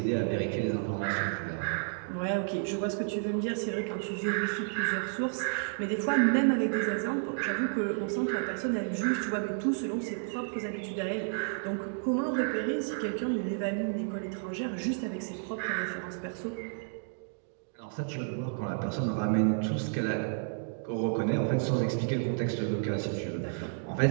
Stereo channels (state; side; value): silent; left; digital silence